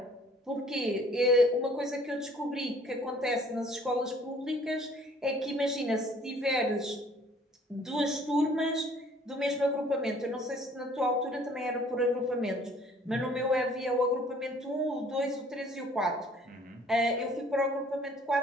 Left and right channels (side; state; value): both; normal; correlation 0.56